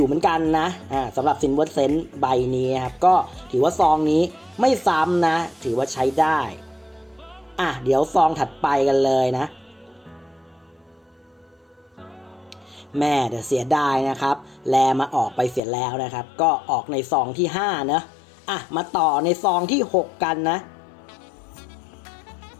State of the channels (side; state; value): right; drops out; at 15.6 s